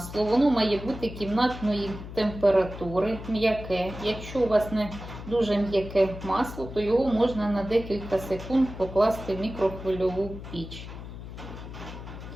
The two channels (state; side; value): noise; left; hum, 11 dB below the sound